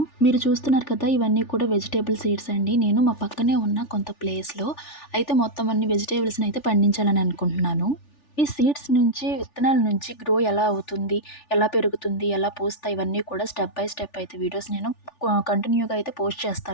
మీరు చూస్తున్నారు కదా! ఇవన్నీ కూడా వెజిటబుల్ సీడ్స్ అండి. నేను మా పక్కనే ఉన్న కొంత ప్లేస్‌లో అయితే మొత్తం అన్ని వెజిటబుల్స్‌ని అయితే పండించాలని అనుకుంటున్నాను. ఈ సీడ్స్ నుంచి విత్తనాల నుంచి గ్రో ఎలా అవుతుంది? ఎలా పెరుగుతుంది? ఎలా పూస్తాయి? ఇవన్నీ కూడా స్టెప్ బై స్టెప్ అయితే వీడియోస్ నేను కంటిన్యూగా అయితే పోస్ట్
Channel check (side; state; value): right; late; 3.4 ms